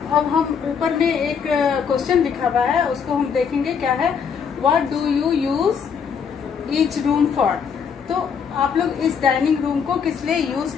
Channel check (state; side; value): quieter; right; 6.7 dB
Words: हम ऊपर में एक क्वेश्चन लिखा हुआ है, उसको हम देखेंगे क्या है। What do you use each room for? तो आप लोग इस डाइनिंग रूम को किस लिए यूज